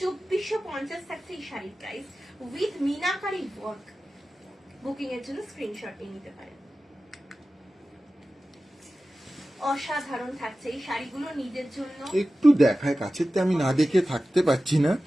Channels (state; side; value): normal; both; correlation 0.95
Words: থাকছে এই শাড়ির price with meenakari work. Booking এর জন্য স্ক্রিনশট নিয়ে নিতে পারেন। অসাধারণ থাকছে এই শাড়িগুলো নিজের জন্য। একটু দেখায় কাছেতে, আমি না দেখে থাকতে পারছি না।